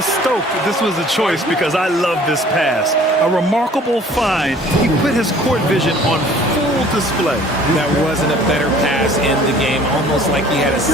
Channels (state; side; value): normal; both; correlation 0.52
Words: stoked that this was a choice because I love this pass. A remarkable find. He put his court vision on full display. That wasn't a better pass in the game, almost like he had a